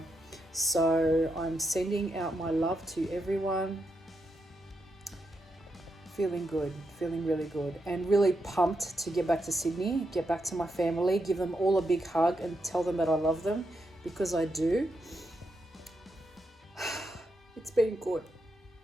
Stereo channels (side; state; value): both; normal; correlation 0.83